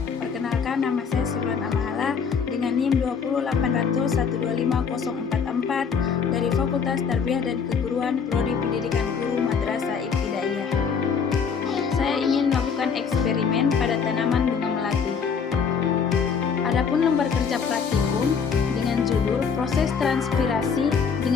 Perkenalkan, nama saya Surlan Amahala dengan NIM 208012504 dari Fakultas Tarbiyah dan Keguruan Prodi Pendidikan Guru Madrasah Ibtidaiyah. Saya ingin melakukan eksperimen pada tanaman bunga melati. Adapun lembar kerja praktikum dengan judul Proses Transpirasi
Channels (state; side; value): quieter; right; 6.1 dB